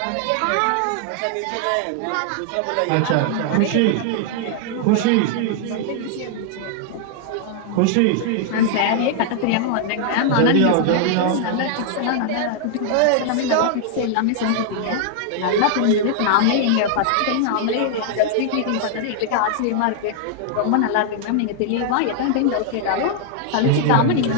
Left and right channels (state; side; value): different; both; correlation 0.00